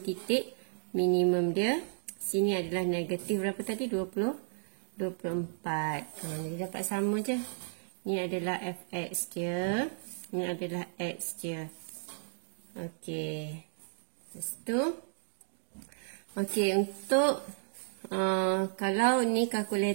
minimum dia. Sini adalah negatif berapa tadi? 24. Jadi dapat sama je. Ni adalah fx dia. Ni adalah x dia. Okey. Lepas tu. Okey, untuk kalau ni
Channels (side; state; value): left; silent; digital silence